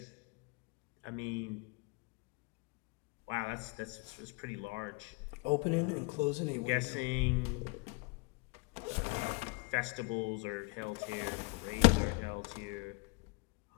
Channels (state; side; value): quieter; right; 28.5 dB